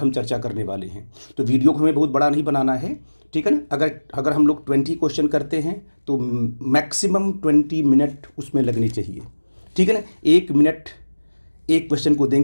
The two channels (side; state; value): both; inverted; correlation -1.00